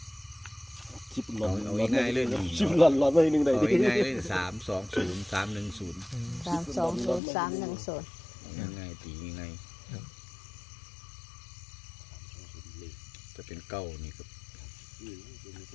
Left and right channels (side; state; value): right; drops out; at 7.2 s